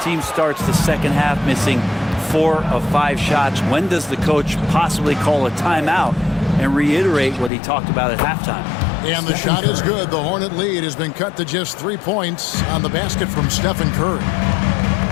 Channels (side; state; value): right; drops out; at 7.5 s